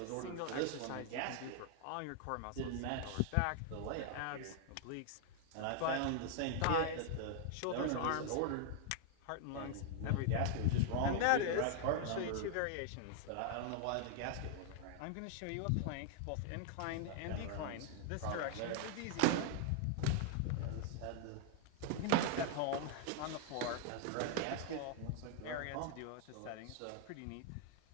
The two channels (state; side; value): different; both; correlation 0.00